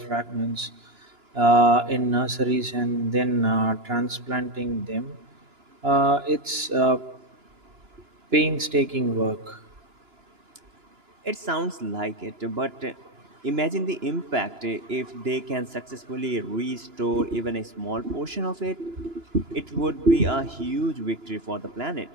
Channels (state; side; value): late; left; 2.9 ms